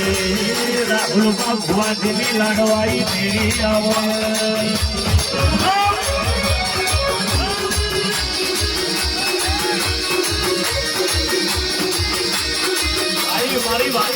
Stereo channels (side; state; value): both; identical; correlation 1.00